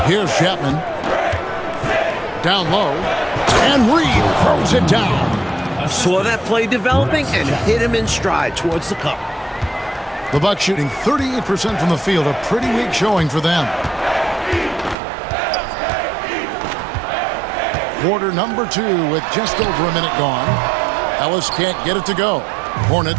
Here's Chapman. Down low. And Reed throws it down. Saw that play developing and hit him in stride towards the cup. The Bucks shooting 38% from the field. A pretty weak showing for them. Quarter number 2 with just over a minute gone. Ellis can't get it to go.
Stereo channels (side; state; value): left; drops out; at 15.0 s